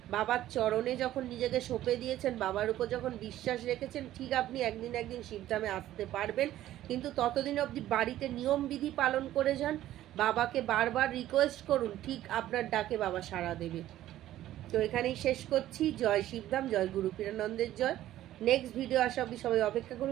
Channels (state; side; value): quieter; left; 13.6 dB